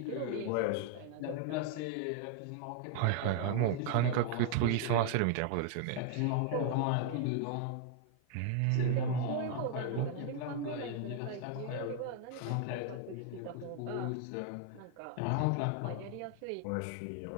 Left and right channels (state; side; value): different; both; correlation 0.00